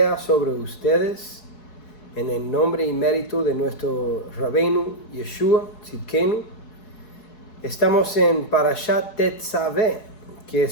sobre ustedes en el nombre y mérito de nuestro Rabbeinu Yeshua Tzidkenu. Estamos en Parashat Tetzaveh, que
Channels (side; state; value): right; late; 4.7 ms